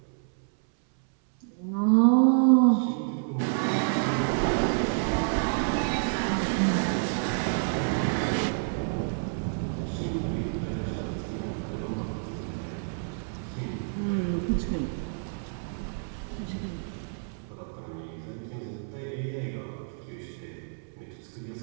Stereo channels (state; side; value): silent; left; 59 dB below the other